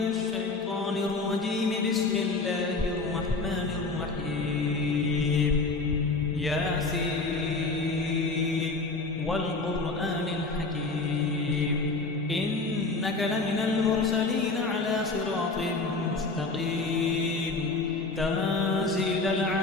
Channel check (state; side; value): quieter; right; 3.6 dB